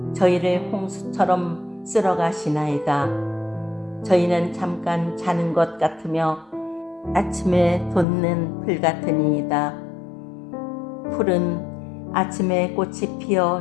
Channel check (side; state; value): right; drops out; at 8.1 s